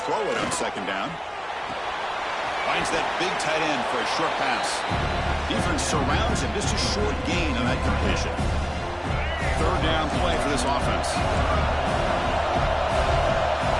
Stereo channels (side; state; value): both; identical; correlation 1.00